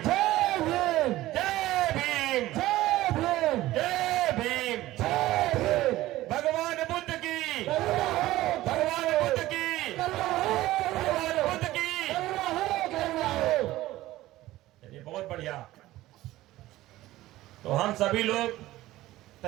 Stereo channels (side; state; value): left; quieter; 16.3 dB